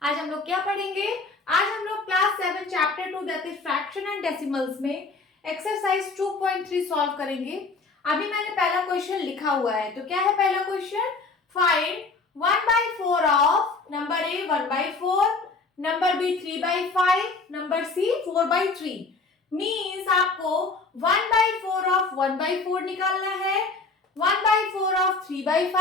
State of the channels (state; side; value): quieter; right; 3.9 dB